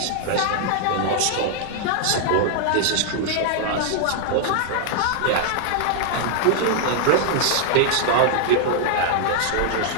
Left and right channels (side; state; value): both; different; correlation -0.01